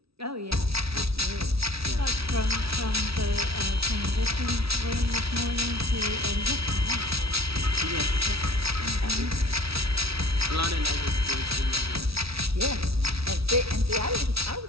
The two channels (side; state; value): left; late; 0.76 ms